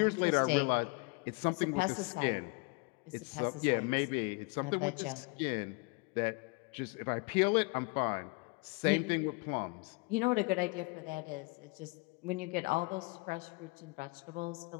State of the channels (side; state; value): right; quieter; 28.7 dB